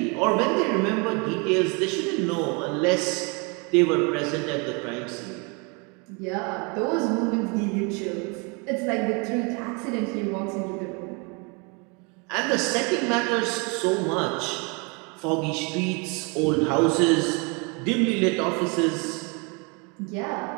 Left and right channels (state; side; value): quieter; left; 31.2 dB